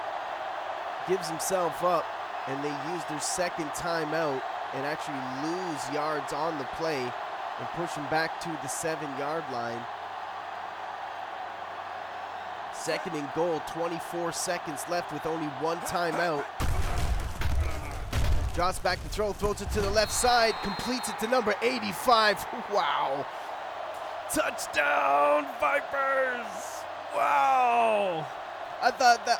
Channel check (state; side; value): identical; both; correlation 1.00